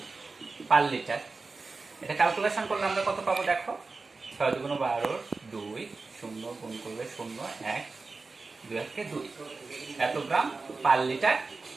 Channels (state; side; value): quieter; left; 4.0 dB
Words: পার লিটার। এটা ক্যালকুলেশন করলে আমরা কত পাবো দেখো, 6 দুগুণ 12, 2 0 গুণ করলে 0 1 2 1 2, এত গ্রাম পার লিটার